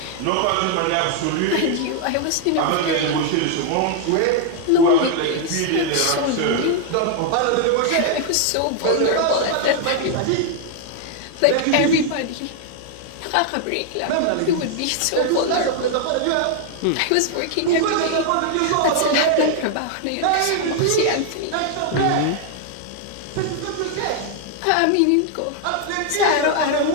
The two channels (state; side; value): different; both; correlation 0.00